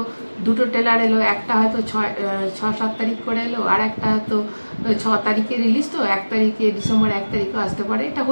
দুটো ট্রেলার এলো, একটা হয়তো 6-7 তারিখ করে এলো, আর একটা হয়তো 6 তারিখে রিলিজ। তো 1 তারিখে ডিসেম্বর 1 তারিখও আসতে পারে, এটা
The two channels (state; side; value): inverted; both; correlation -1.00